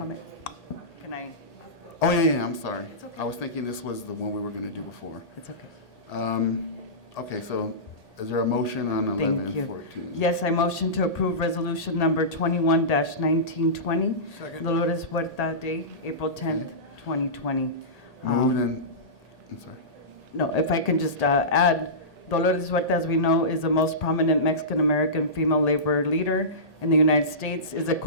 Can I? Oh, yeah, I'm sorry. It's okay. I was thinking this was the one we were going to do before. It's okay. Okay, so is there a motion on Thank you. 1114? Yes, I motion to approve resolution number 21-1920, Second. Dolores Huerta Day, April 10th, 2020. Moved and, I'm sorry. No, if I can just add, Dolores Huerta, as we know, is the most prominent Mexican-American female labor leader in the United States, is a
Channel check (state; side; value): late; right; 1.8 ms